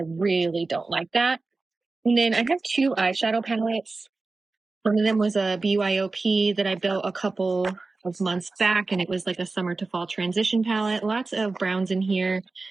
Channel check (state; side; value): quieter; left; 3.7 dB